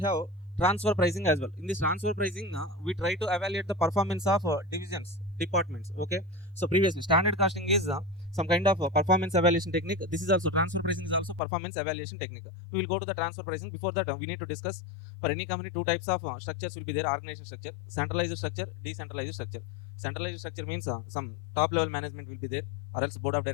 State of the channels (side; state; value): right; drops out; at 11.4 s